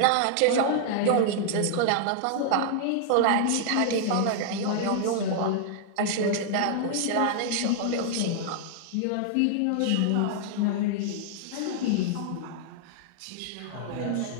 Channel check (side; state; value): both; different; correlation -0.01